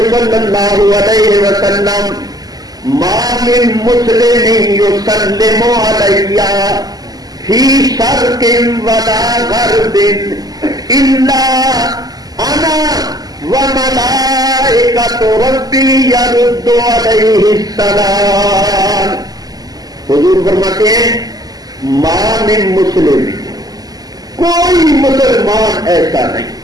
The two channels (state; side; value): late; left; 0.18 ms